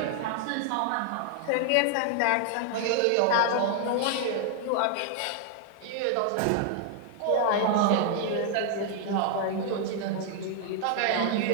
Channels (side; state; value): both; different; correlation 0.00